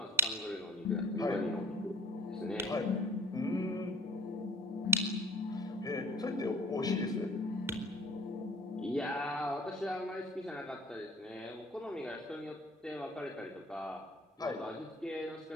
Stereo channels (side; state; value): both; normal; correlation 0.45